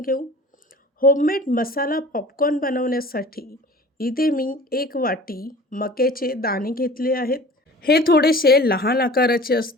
घेऊ. होममेड मसाला पॉपकॉर्न बनवण्यासाठी इथे मी 1 वाटी मक्याचे दाणे घेतले आहेत. हे थोडेसे लहान आकाराचे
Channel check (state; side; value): normal; both; correlation 0.43